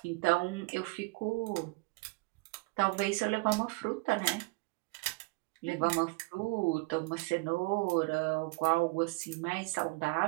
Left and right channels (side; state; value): left; quieter; 25.8 dB